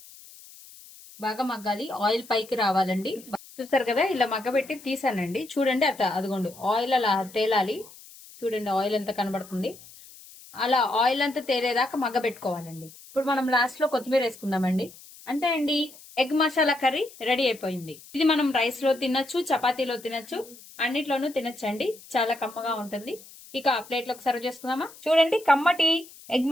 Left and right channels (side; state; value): left; noise; hiss, 20 dB below the sound